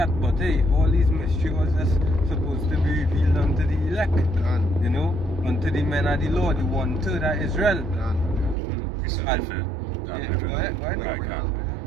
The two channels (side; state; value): left; drops out; at 8.6 s